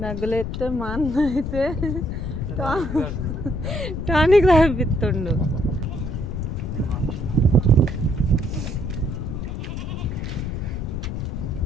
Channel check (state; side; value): noise; left; rumble, 5 dB below the sound